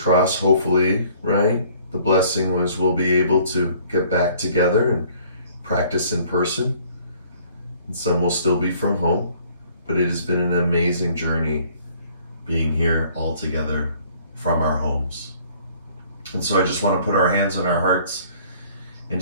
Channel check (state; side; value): inverted; both; correlation -0.57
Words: hopefully, right? The blessing was we'll be able to get back together and practice in person. And some will still be from home. But it has been an amazing journey being here all together from our homes. And so I just want to put our hands on our hearts and